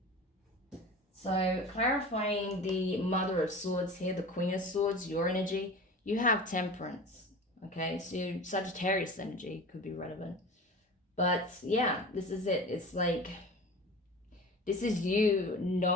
So clarifying the Mother of Swords here, the Queen of Swords, your energy, you have Temperance. Okay, so Sagittarius energy could be relevant. But yeah, this is it. It's like, this is you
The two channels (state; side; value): normal; both; correlation 0.35